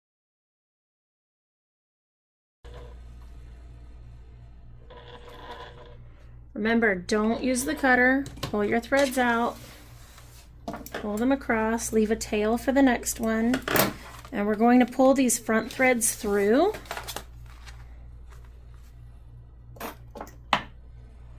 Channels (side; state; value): both; identical; correlation 1.00